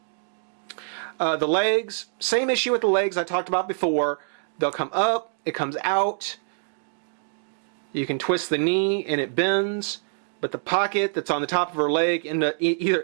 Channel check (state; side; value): silent; left; digital silence